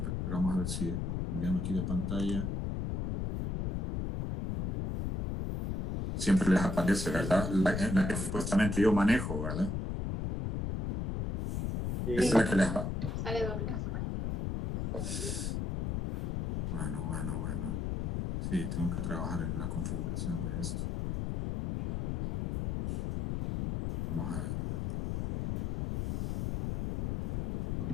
vamos a ver si cambiando aquí de pantalla. Siempre les aparece, ¿verdad? La que supuestamente yo manejo, ¿verdad? Sí. Esa es la que les Sale doble. Bueno. Sí, tengo que trabajar en la configuración de esto. Vamos a ver.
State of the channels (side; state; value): left; noise; rumble, 2 dB below the sound